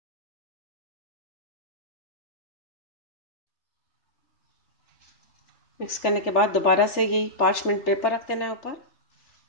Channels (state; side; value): late; right; 3.4 ms